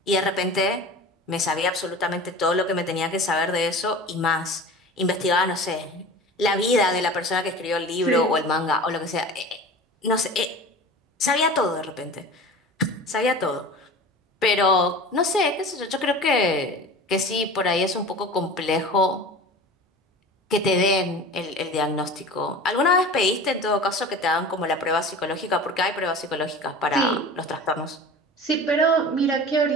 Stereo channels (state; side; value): normal; both; correlation 0.36